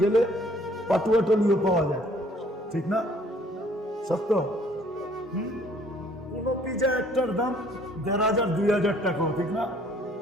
গেলে পাটুয়াটলিও পাওয়া যায়, ঠিক না? সত্য? কোন পিজা একটার দাম 1500-2000 টাকাও, ঠিক না?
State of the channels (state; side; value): normal; both; correlation 0.59